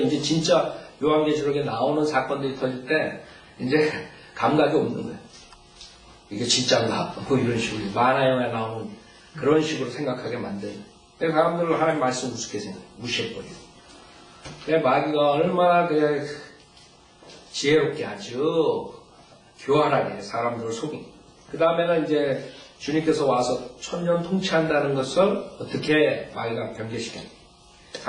이제 진짜 요한계시록에 나오는 사건들이 터질 때 이제 감각이 없는 거예요. 이게 진짜인가? 뭐 이런 식으로 만화 영화에 나오는 그런 식으로 생각하게 만드는. 그래서 사람들은 하나님 말씀 우습게 무시해버려요. 마귀가 얼마나 지혜롭게 아주 교활하게 사람들을 속인. 그 다음에는 이제 주님께서 와서 천년 통치한다는 것을 어떻게 마귀가 변개시켰냐.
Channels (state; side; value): identical; both; correlation 1.00